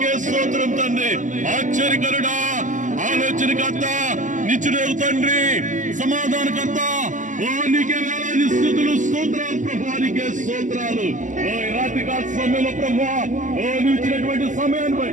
స్తోత్రం తండ్రి. ఆశ్చర్యకరుడా, ఆలోచనకర్త, నిత్యుడగు తండ్రి, సమాధానకర్త, ఓ నీకే వేలాది స్తుతులు స్తోత్రాలు ప్రభువా, నీకే స్తోత్రాలు. ఓ రాత్రి కాల సమయంలో ప్రభువా, ఓ నువ్వు ఇచ్చినటువంటి సమయాన్ని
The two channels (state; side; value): late; left; 0.37 ms